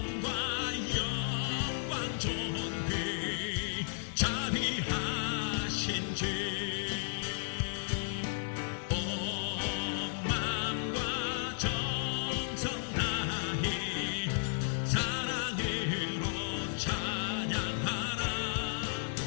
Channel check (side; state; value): right; silent; digital silence